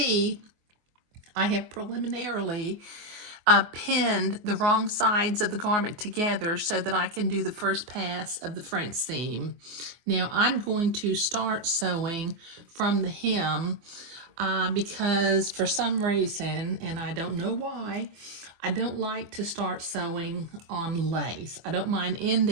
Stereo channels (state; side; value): late; left; 24 ms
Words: I have preliminarily pinned the wrong sides of the garment together so that I can do the first pass of the French seam. Now, I'm going to start sewing from the hem because for some reason, and I don't know why, I don't like to start sewing on lace. I don't mind